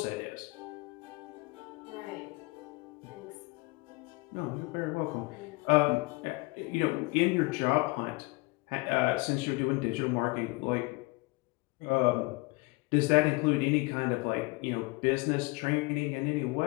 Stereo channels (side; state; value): right; quieter; 25.6 dB